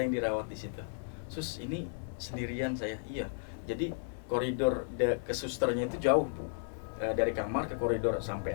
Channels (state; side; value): silent; right; 55 dB below the other